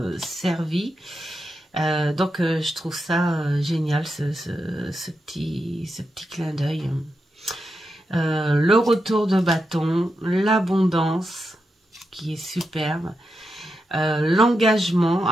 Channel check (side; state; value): both; normal; correlation 0.87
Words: servis, donc je trouve ça génial ce petit clin d'œil. Le retour de bâton, l'abondance qui est superbe. L'engagement,